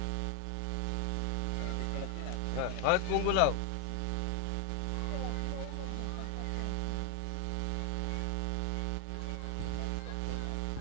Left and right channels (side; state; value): both; different; correlation 0.01